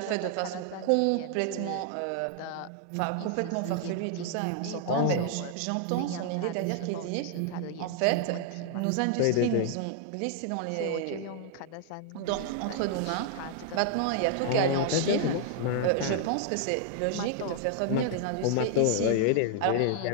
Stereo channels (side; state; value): both; different; correlation 0.00